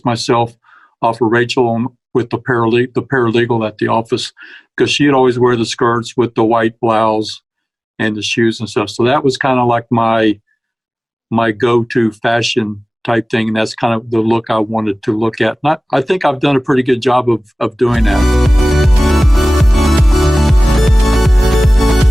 myself off of Rachel with the paralegal at the office, because she'd always wear the skirts with the white blouse and the shoes and stuff. So that was kind of like my go-to fashion type thing, and that's kind of the look I wanted to look at. And I think I've done a pretty good job of doing that.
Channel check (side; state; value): both; normal; correlation 0.98